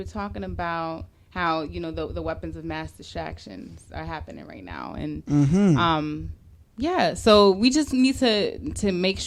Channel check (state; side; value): identical; both; correlation 1.00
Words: talking about how the weapons of mass distractions are happening right now, and Yeah, so we just need to make